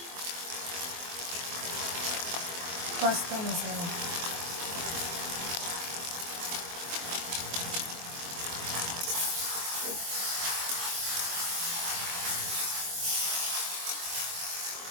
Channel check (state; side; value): late; left; 23 ms